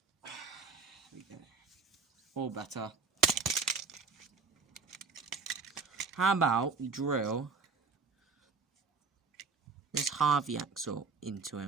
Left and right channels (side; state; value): left; quieter; 4.7 dB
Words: we go. Or better. How about we drill this Harvey axle into